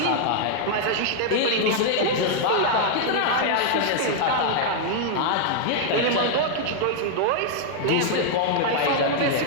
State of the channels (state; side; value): different; both; correlation 0.00